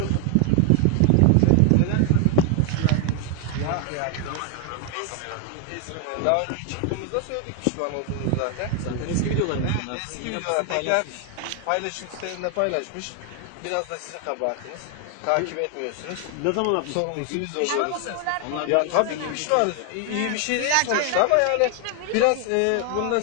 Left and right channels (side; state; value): both; different; correlation 0.00